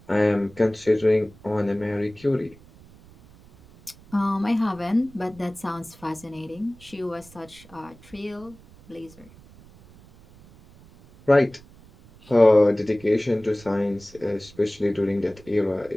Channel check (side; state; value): right; noise; rumble, 24 dB below the sound